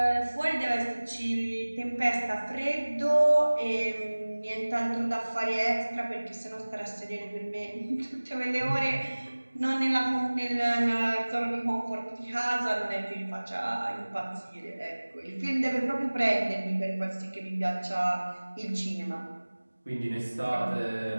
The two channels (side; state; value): both; inverted; correlation -1.00